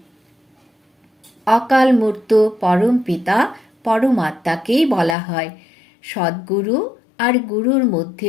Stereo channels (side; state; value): right; drops out; at 5.2 s